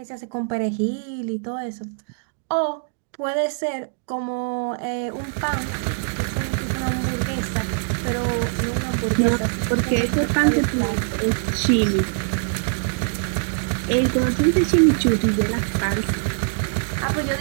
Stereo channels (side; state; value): left; silent; digital silence